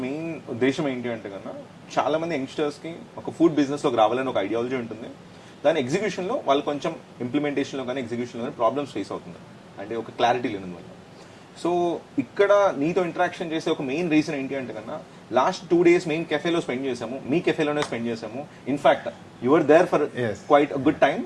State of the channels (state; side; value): identical; both; correlation 1.00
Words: మెయిన్ ఉద్దేశం ఏంటి అంటే కన్నా చాలా మంది యంగ్స్టర్స్కి ఒక ఫుడ్ బిజినెస్లోకి రావాలని ఒక ఐడియాలజీ ఉంటుంది. దాని ఎగ్జిక్యూషన్లో వాళ్ళు కొంచెం ఇంప్లిమెంటేషన్లో కానీ ఎగ్జిక్యూషన్లో కానీ ప్రాబ్లమ్స్ ఫేస్ అవుతున్నారు, అంటే ఒక క్లారిటీ లేనందువల్ల. సో ఇక్కడ నీతో ఇంటరాక్షన్ చేసే ఒక మెయిన్ రీజన్ ఏంటి అంటే కన్నా లాస్ట్ 2 days మేము కెఫేలో స్పెండ్ చేసాము, మీ కెఫేలోనే స్పెండ్ చేసాము. In fact your there for quite good time,